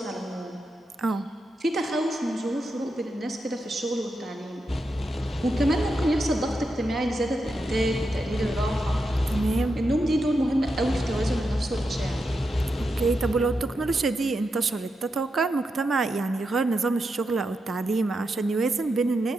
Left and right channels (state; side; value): normal; both; correlation 0.86